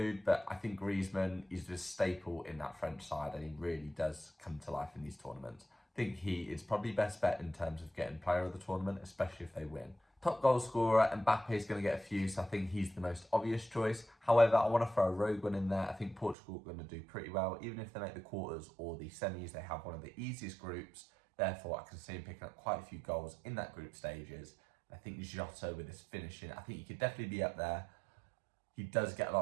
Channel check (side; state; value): left; drops out; at 16.4 s